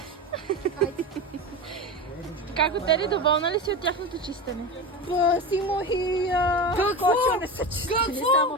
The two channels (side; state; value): both; normal; correlation 0.24